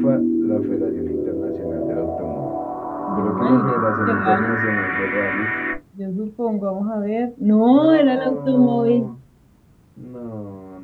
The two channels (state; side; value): identical; both; correlation 1.00